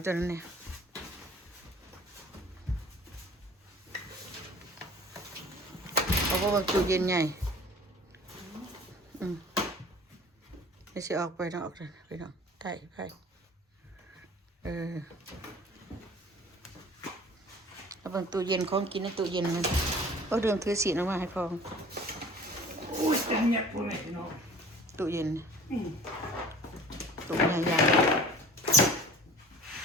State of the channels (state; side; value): normal; both; correlation 0.46